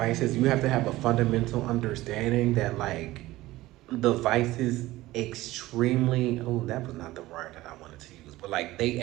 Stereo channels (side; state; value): left; quieter; 17.5 dB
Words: you have to have a fundamental understanding that like the vices extremely oh that was not the word that I wanted to use, but like they